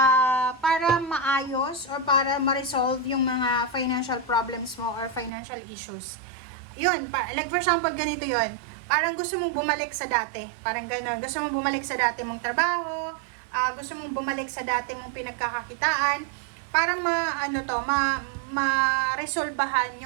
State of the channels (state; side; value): drops out; left; at 5.3 s